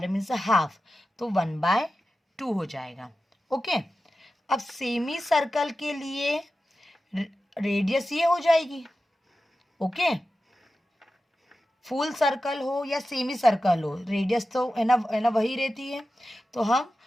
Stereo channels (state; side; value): normal; both; correlation 0.93